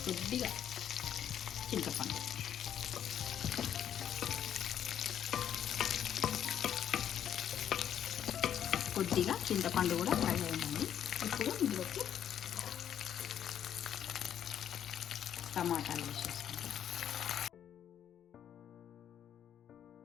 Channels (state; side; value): quieter; right; 9.7 dB